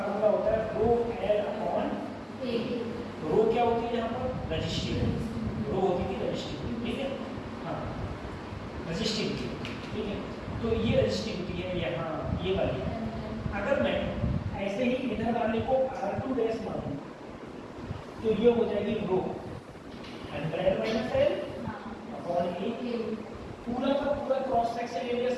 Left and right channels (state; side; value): identical; both; correlation 1.00